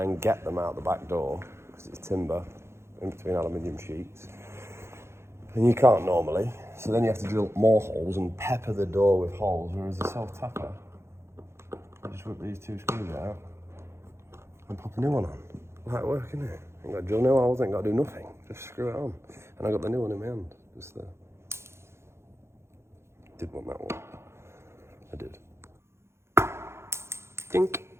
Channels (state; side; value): late; left; 0.13 ms